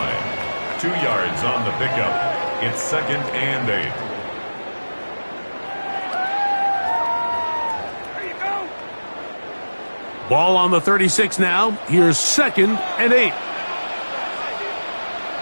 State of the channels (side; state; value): both; inverted; correlation -1.00